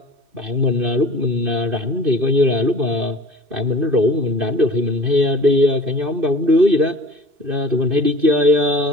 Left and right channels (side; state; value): left; late; 2.6 ms